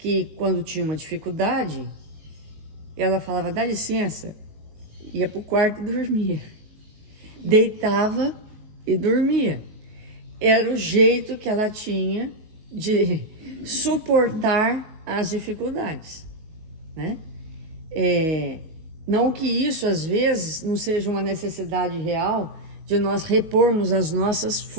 quando tinha uma dificuldade, ela falava, dá licença, ia para o quarto e dormia. Deitava e dormia. Era o jeito que ela tinha de suportar as dificuldades, né? Não que isso, às vezes, não seja uma necessidade real de nós repormos as nossas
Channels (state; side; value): late; left; 19 ms